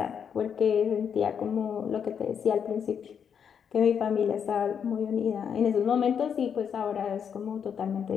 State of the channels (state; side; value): quieter; right; 7.5 dB